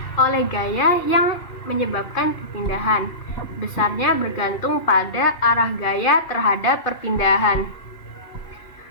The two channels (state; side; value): late; right; 2.5 ms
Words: oleh gaya yang menyebabkan perpindahan. Besarnya bergantung pada arah gaya terhadap perpindahan.